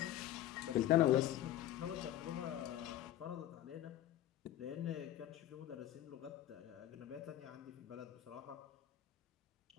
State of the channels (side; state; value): right; quieter; 12.9 dB